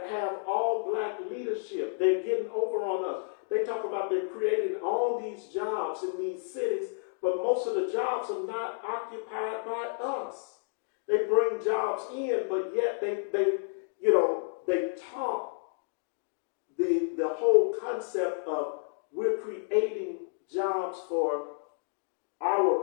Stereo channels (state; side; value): silent; right; digital silence